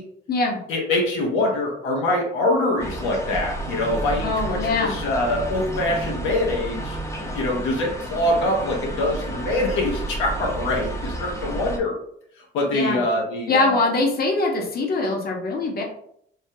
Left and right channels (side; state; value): both; normal; correlation 0.23